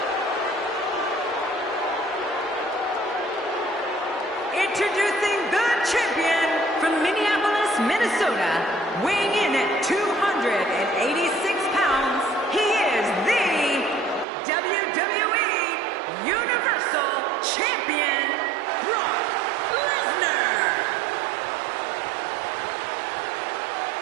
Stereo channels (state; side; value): drops out; left; at 14.2 s